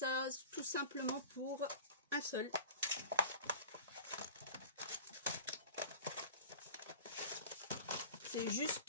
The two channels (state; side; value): inverted; both; correlation -0.38